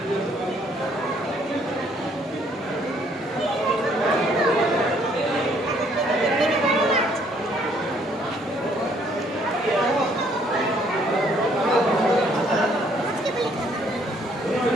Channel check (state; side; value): normal; both; correlation 0.65